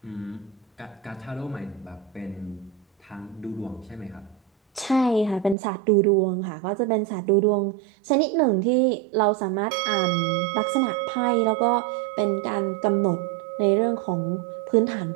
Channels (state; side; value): drops out; left; at 5.6 s